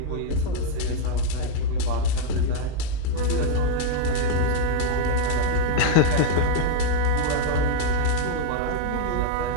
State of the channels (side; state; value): both; different; correlation 0.00